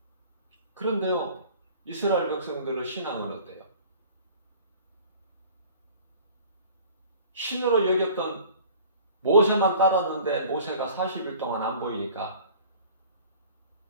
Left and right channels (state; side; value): inverted; both; correlation -0.47